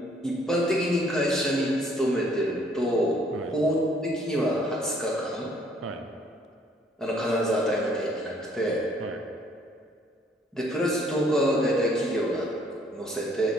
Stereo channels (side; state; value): both; normal; correlation 0.63